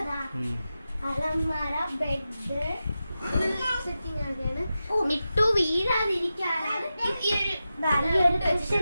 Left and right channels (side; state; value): both; inverted; correlation -0.92